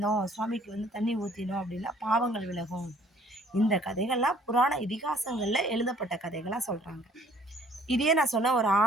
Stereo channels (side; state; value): both; normal; correlation 0.58